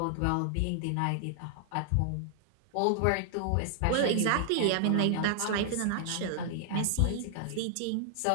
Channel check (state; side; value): different; both; correlation -0.01